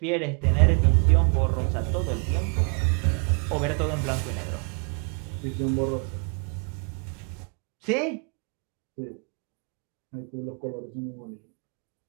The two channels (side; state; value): left; quieter; 36.6 dB